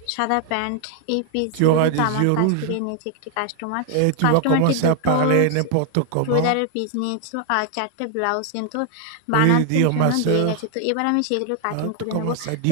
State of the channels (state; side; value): different; both; correlation 0.00